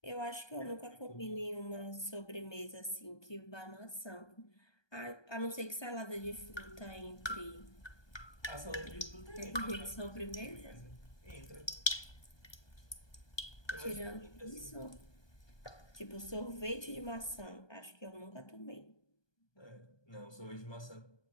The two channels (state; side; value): late; right; 1.2 ms